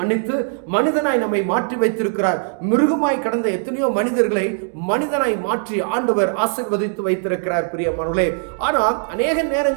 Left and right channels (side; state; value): left; silent; digital silence